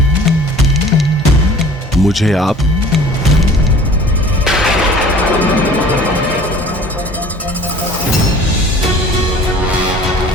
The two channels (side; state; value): both; normal; correlation 0.47